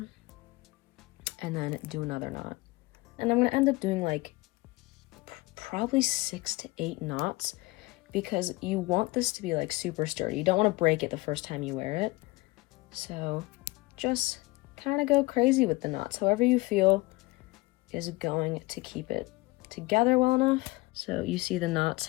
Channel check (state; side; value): quieter; right; 22.5 dB